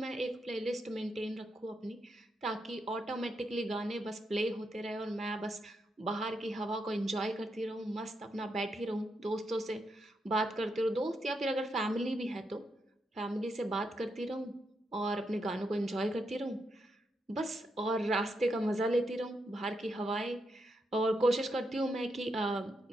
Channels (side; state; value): both; normal; correlation 0.82